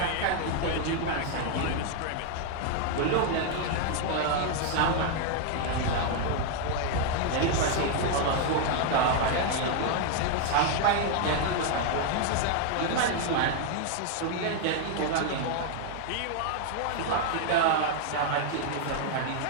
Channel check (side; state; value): both; different; correlation 0.00